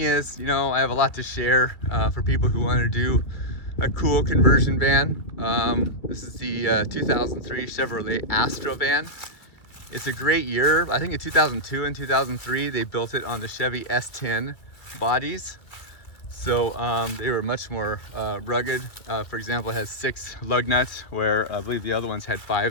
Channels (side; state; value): right; late; 2.3 ms